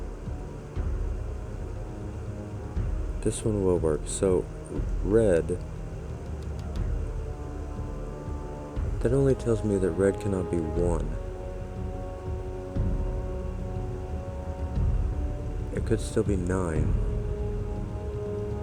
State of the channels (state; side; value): identical; both; correlation 1.00